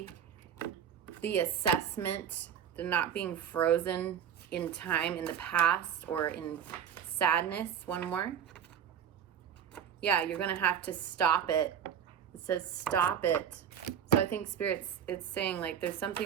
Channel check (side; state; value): left; quieter; 8.7 dB